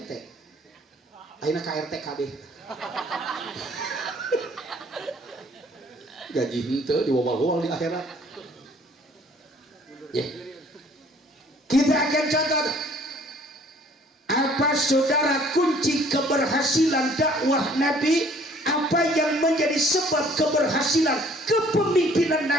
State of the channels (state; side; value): normal; both; correlation 0.57